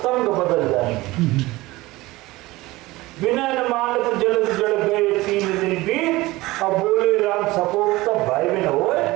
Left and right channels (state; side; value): quieter; left; 19.8 dB